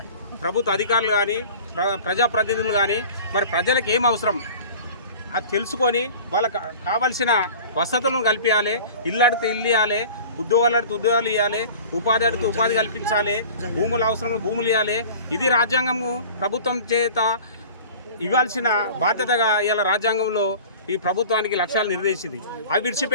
ప్రభుత్వ అధికారులు కానీ ప్రజాప్రతినిధులు కానీ మరి ప్రజలకు ఏం అవసరం అది తెలుసుకొని వాళ్ళకి కావలసిన వసతులను కల్పించాలి. ఇల్లు అడిగితే ఇల్లు ఇవ్వాలి, ఉద్యోగాలు అడిగితే ఉద్యోగాలు ఇవ్వాలి, ఉపాధి అడిగితే ఉపాధి కల్పించాలి, భూములు అవసరం భూములు ఇవ్వాలి. ఇది రాజ్యాంగము ప్రభుత్వం చేత ఇవ్వాల్సిన బాధ్యతగా ఇలా రాజ్యాంగంలో ఈ ప్రభుత్వానికి లక్ష్యాలు నిర్దేశించింది. అవి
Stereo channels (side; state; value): both; inverted; correlation -0.42